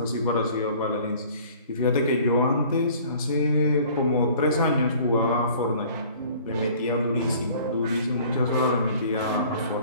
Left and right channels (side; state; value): both; inverted; correlation -0.51